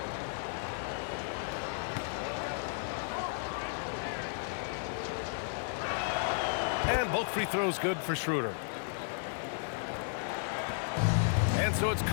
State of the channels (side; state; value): right; silent; digital silence